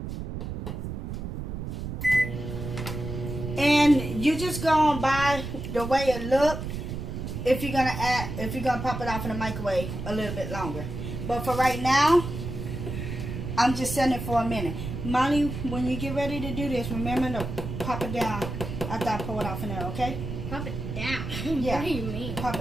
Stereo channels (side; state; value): right; noise; rumble, 6 dB below the sound